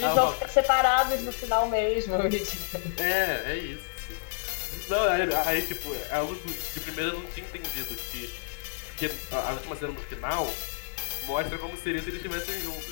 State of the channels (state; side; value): silent; right; digital silence